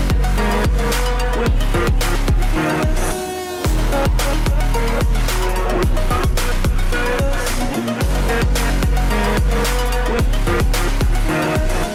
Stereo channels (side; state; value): both; identical; correlation 1.00